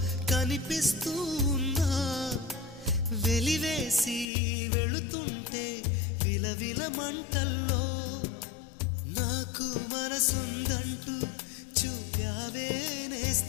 కనిపిస్తూ ఉన్నా వెలివేసి వెళుతుంటే విలవిల మంటల్లో నాకు మనసుందంటూ చూపావే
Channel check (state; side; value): drops out; right; at 4.2 s